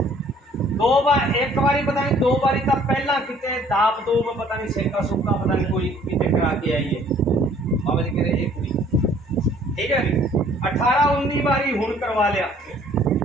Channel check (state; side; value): normal; both; correlation 0.58